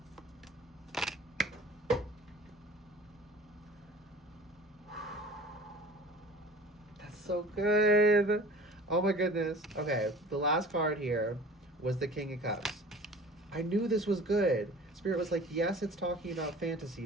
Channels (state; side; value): normal; both; correlation 0.44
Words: That's so good. Oh my goodness. Okay, the last card here was the King of Cups. I knew this was good. Spirit was like, yes, it's talking about fantasy,